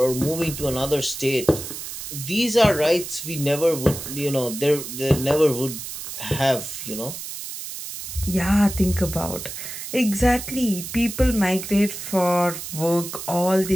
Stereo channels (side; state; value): right; noise; hiss, 8 dB below the sound